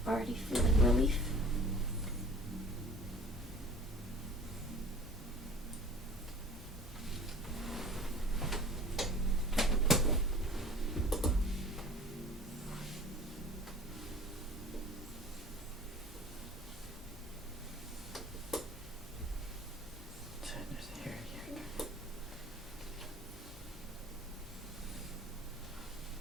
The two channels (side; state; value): both; normal; correlation 0.45